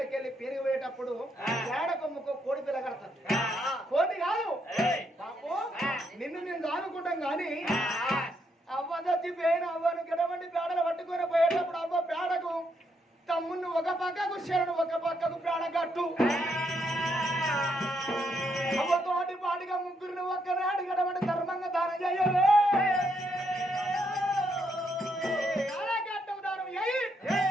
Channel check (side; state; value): both; normal; correlation 0.76